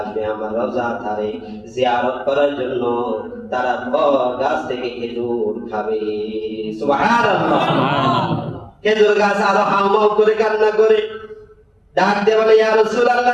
আমার রওজা ধারে জিয়ারত করার জন্য, তারা তোর গাছ থেকে খেজুর খাবে। সুবহানাল্লাহ। খেজুর গাছ আরো হাউমাউ করে কান্না করে ডাক দিয়ে বলে, ইয়া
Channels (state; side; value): identical; both; correlation 1.00